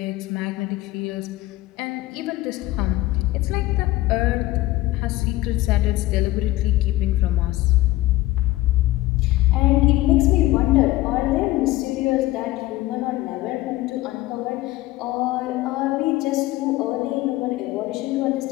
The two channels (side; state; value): right; quieter; 17.5 dB